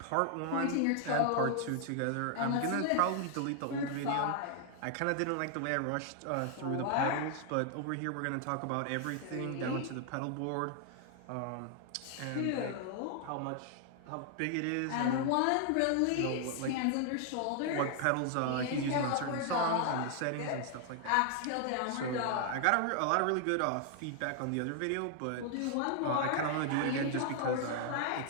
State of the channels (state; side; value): different; both; correlation 0.00